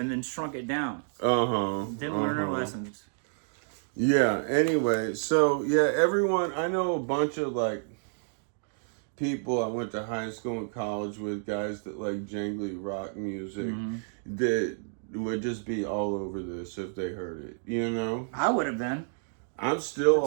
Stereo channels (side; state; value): left; silent; digital silence